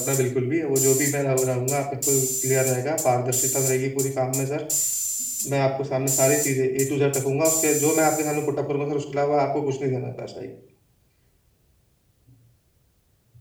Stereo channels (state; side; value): identical; both; correlation 1.00